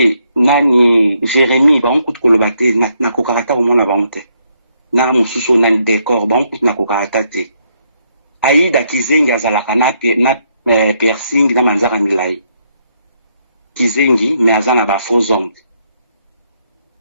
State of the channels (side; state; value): both; inverted; correlation -0.74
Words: nani Jérémie ba on ko lobate na ko karata au mona ba onte. Na mususu na décor ba on na ko karata te. Aïda Kizengi azalaka na piercing na manzara milai. Kizengi mais azana ba faux hommes.